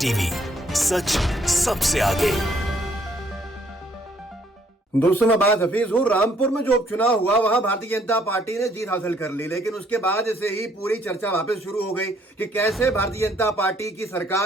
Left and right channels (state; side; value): normal; both; correlation 0.66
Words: टीवी, सच सबसे आगे। दोस्तों मैं बात हफीज हूँ। रामपुर में जो उपचुनाव हुआ वहां भारतीय जनता पार्टी ने जीत हासिल कर ली, लेकिन उसके बाद से ही पूरी चर्चा वापस शुरू हो गई कि कैसे भारतीय जनता पार्टी की